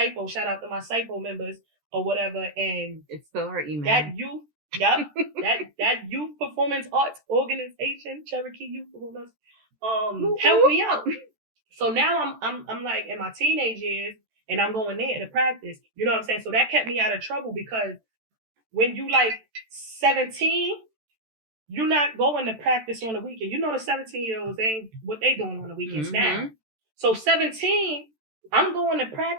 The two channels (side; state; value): left; late; 14 ms